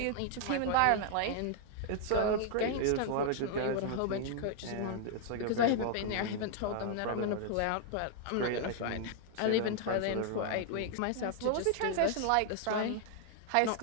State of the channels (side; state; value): both; different; correlation 0.00